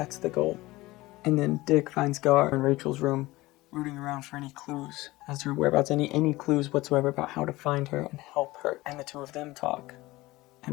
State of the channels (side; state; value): right; quieter; 19.4 dB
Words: the goal. And then Dick finds Gar in Rachel's room, rooting around for any clues as to her whereabouts, any clues whatsoever about how to find her and help her. And the two of them talk